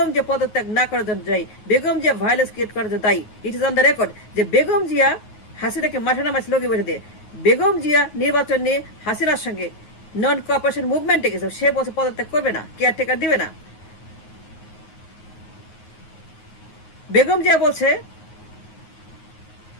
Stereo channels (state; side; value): late; right; 9.4 ms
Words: জিয়া পদত্যাগ না করার জন্য দায়ী, বেগম জিয়া ভায়োলেন্স ক্রিয়েট করার জন্য দায়ী। It is on the record যে বেগম জিয়া হাসিনাকে মাঠে নামাইছে লগি বৈঠা দিয়ে। বেগম জিয়া নির্বাচন নিয়ে হাসিনার সঙ্গে নন কোঅপারেশন মুভমেন্টে গেছে, সে বছর পদত্যাগ করবে না, কেয়ারটেকার দিবে না। বেগম জিয়া বলছে